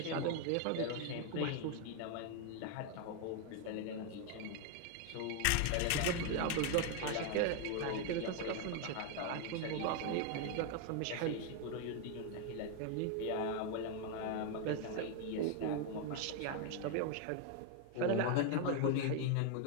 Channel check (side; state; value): both; different; correlation 0.01